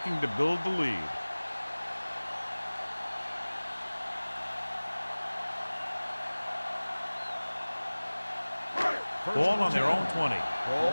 to build the lead. Ball on their own 20. Ball on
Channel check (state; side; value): inverted; both; correlation -1.00